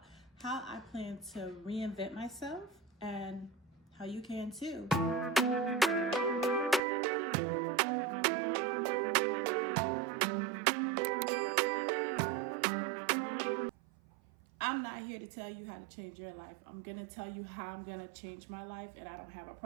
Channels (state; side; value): drops out; left; at 6.8 s